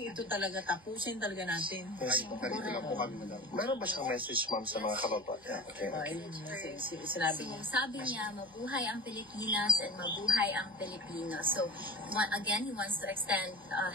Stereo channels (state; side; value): noise; right; hum, 27 dB below the sound